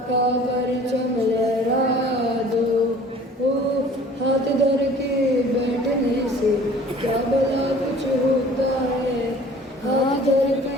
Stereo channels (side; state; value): both; normal; correlation 0.49